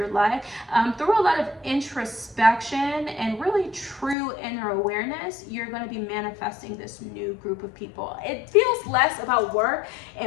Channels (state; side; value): drops out; right; at 4.2 s